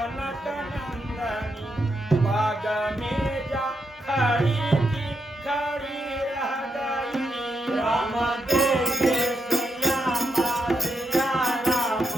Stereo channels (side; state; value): both; normal; correlation 0.81